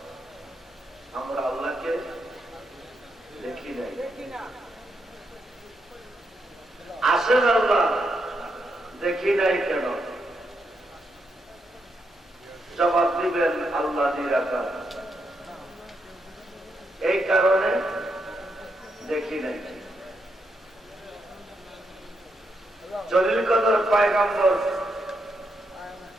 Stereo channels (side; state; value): both; normal; correlation 0.81